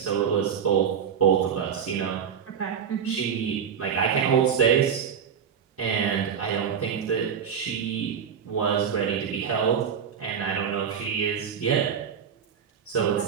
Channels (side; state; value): left; quieter; 7.6 dB